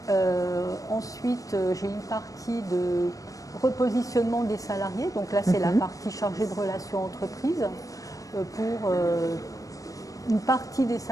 Ensuite j'ai une partie de repositionnement des salariés, donc là c'est la partie chargée de relations entreprises pour une partie des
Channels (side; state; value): right; late; 0.16 ms